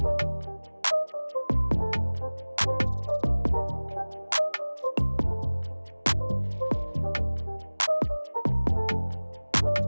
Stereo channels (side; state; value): both; inverted; correlation -1.00